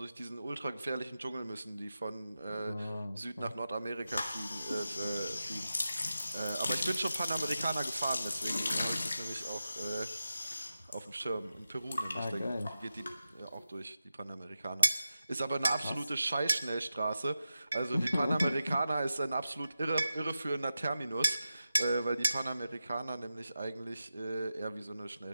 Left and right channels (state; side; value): inverted; both; correlation -0.92